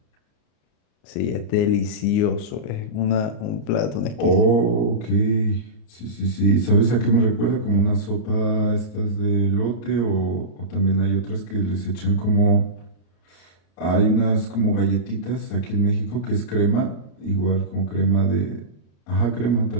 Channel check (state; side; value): late; right; 34 ms